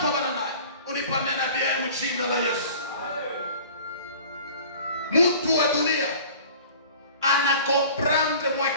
bananaye. Unipamena bien mjina la Yesu. Mtu wa dunia anakomprendre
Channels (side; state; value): both; inverted; correlation -0.45